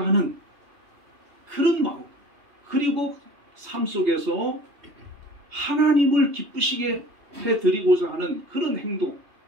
하는 그런 마음, 그리고 삶 속에서 하나님을 기쁘시게 해드리고자 하는 그런 행동,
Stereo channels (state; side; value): late; left; 3.2 ms